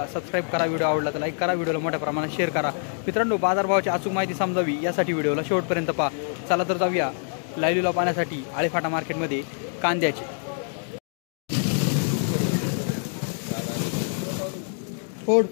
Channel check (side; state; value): right; silent; 61 dB below the other